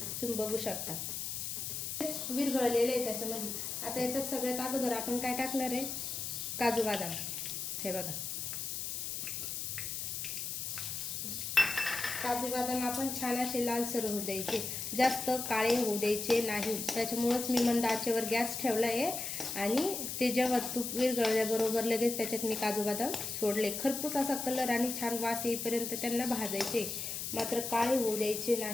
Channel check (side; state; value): left; noise; hiss, 4 dB below the sound